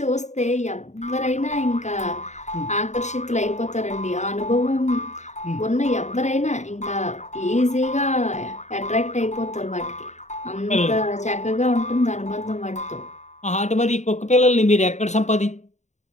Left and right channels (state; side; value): late; right; 0.34 ms